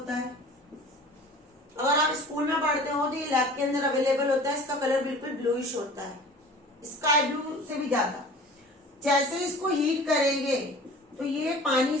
है। अगर आप स्कूल में पढ़ते हो तो ये लैब के अंदर अवेलेबल होता है, इसका कलर बिल्कुल ब्लूइश होता है, स्काई ब्लू से भी ज्यादा। जैसे इसको हीट करेंगे तो ये पानी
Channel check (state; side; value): normal; both; correlation 0.42